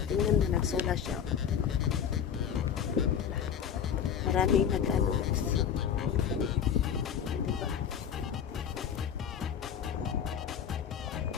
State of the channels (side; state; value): right; quieter; 8.1 dB